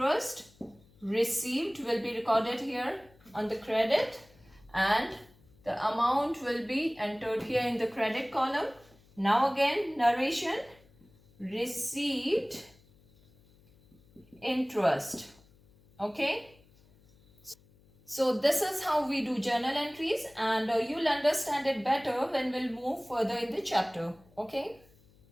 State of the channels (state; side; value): noise; left; hum, 29 dB below the sound